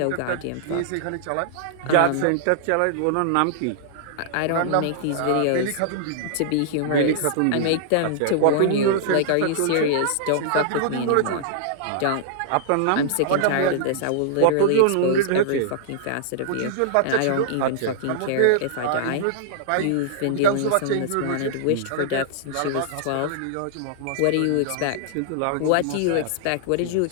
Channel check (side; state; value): both; different; correlation -0.01